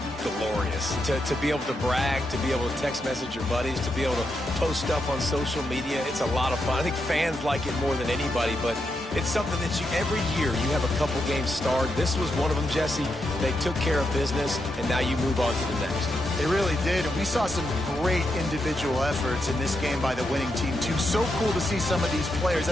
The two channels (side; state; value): both; normal; correlation 0.84